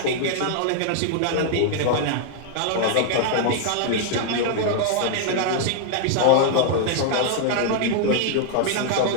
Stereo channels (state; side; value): different; both; correlation 0.00